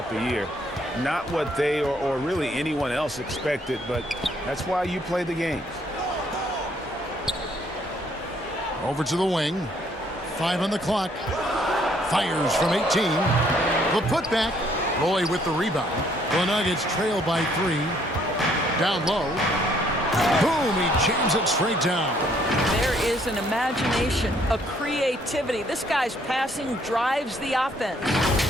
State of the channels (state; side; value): normal; both; correlation 0.66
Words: the year. Not what they or really anyone else expected, but that's why you play the games. Over to the wing. 5 on the clock. Fires from 18. The putback. Roy with the rebound. The Nuggets trail by 3. Down low. Boom, he jams it straight down. There is an imagination, a creativity. This guy's passing drives the offense.